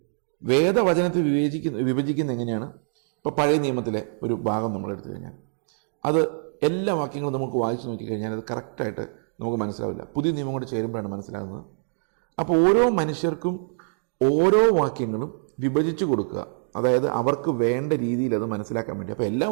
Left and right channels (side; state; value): left; silent; digital silence